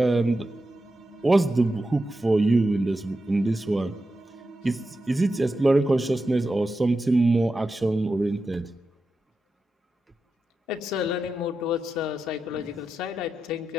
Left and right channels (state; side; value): normal; both; correlation 0.90